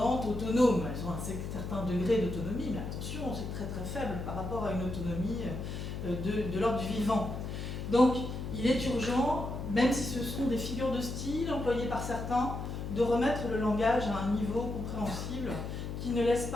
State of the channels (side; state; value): left; noise; hum, 6 dB below the sound